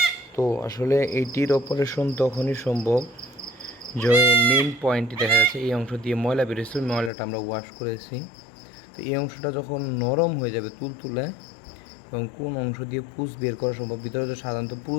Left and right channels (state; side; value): drops out; right; at 7.1 s